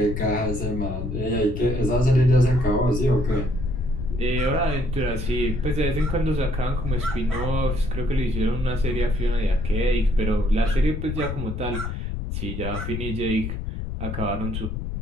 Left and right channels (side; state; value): left; noise; rumble, 4 dB below the sound